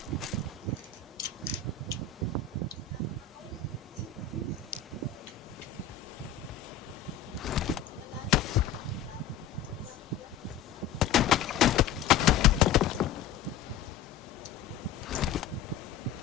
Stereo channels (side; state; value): right; quieter; 7.9 dB